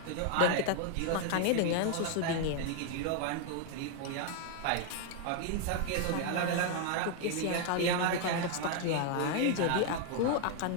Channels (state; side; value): different; both; correlation 0.00